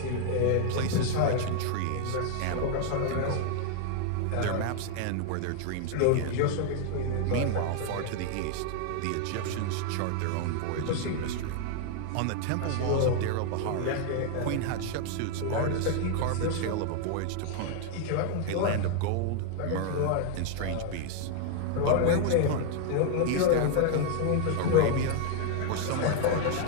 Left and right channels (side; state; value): both; different; correlation 0.00